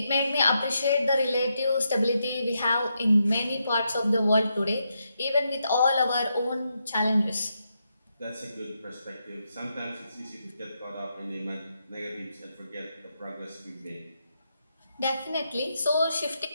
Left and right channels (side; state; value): both; inverted; correlation -0.82